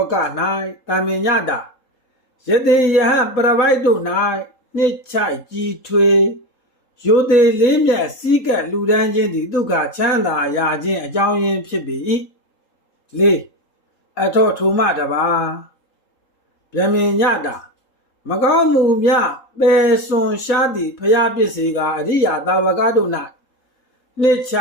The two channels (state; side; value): late; right; 3.8 ms